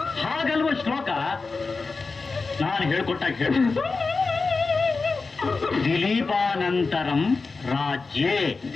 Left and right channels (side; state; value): right; quieter; 4.2 dB